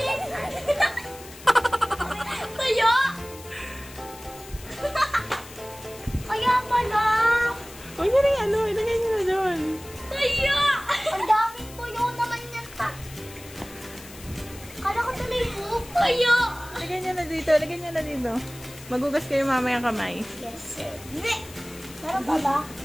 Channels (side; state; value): left; noise; hiss, 18 dB below the sound